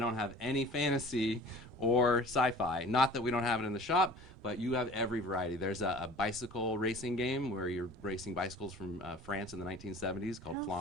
have any fantasy or sci-fi. Not that we don't have it in the shop, but you have every variety. There's a bicycle racing game where you're racing bicycles from France in the 1970s called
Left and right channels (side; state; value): both; normal; correlation 0.45